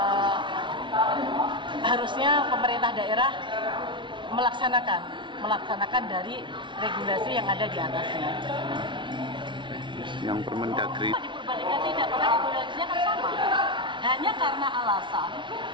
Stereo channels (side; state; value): left; late; 0.24 ms